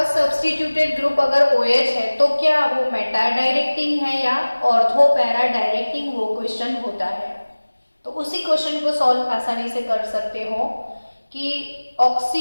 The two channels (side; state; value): both; inverted; correlation -1.00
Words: सब्स्टिट्यूटेड ग्रुप अगर OH है तो क्या वो मेटा डायरेक्टिंग है या ऑर्थो पैरा डायरेक्टिंग, वो क्वेश्चन होता है। तो उसी क्वेश्चन को सॉल्व आसानी से कर सकते हो कि